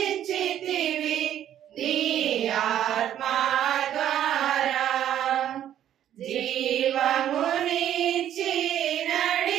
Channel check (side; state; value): left; quieter; 11.0 dB